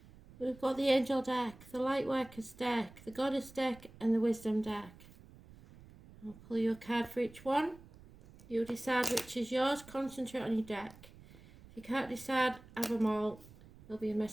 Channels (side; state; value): right; noise; rumble, 21 dB below the sound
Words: We've got the Angel deck, the Lightworkers deck, the Goddess deck, and the Wisdom deck. I'll pull you a card for each one. You decide which is yours. Concentrate on your deck. If you can't decide, have them all. There'll be a